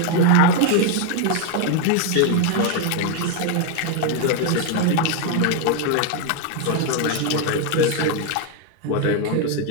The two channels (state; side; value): different; both; correlation 0.01